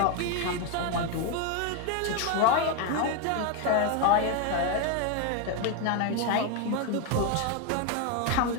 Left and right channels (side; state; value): both; different; correlation 0.02